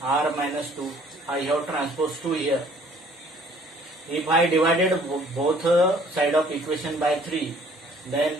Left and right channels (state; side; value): normal; both; correlation 0.57